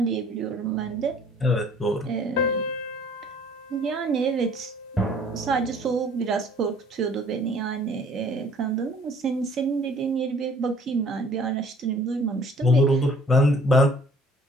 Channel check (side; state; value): both; normal; correlation 0.55